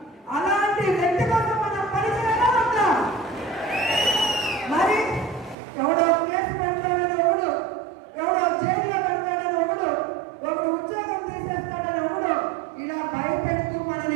అలాంటి వ్యక్తి కోసం మనం పని చేయాలంట. మరి ఎవడో కేసు పెడతాడని ఒకడు, ఎవడో జైల్లో పెడతాడని ఒకడు ఉద్యోగం తీసేస్తాడని ఒకడు ఇలా భయపెడుతూ మనని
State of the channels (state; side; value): drops out; left; at 5.6 s